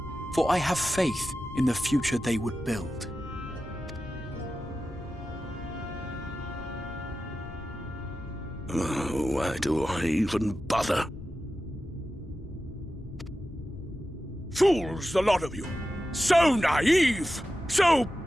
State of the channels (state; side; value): noise; left; rumble, 18 dB below the sound